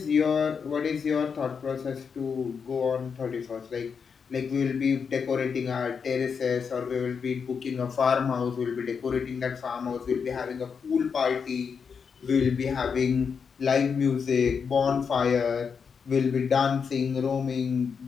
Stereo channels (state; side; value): quieter; right; 6.2 dB